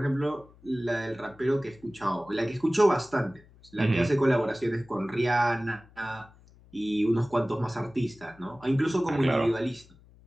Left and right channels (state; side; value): noise; left; hum, 26 dB below the sound